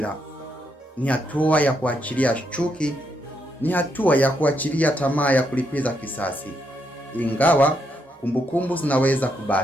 Ni hatua ya kuachilia chuki. Ni hatua ya kuachilia tamaa ya kulipiza kisasi, ingawa kumbukumbu zinaweza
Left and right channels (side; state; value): both; normal; correlation 0.78